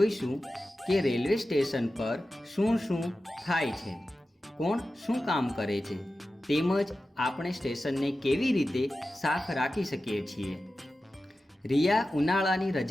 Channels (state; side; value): normal; both; correlation 0.93